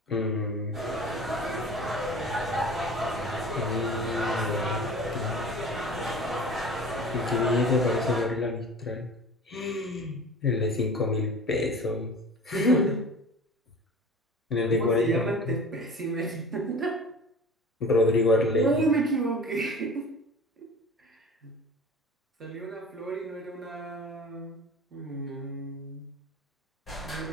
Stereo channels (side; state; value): both; normal; correlation 0.39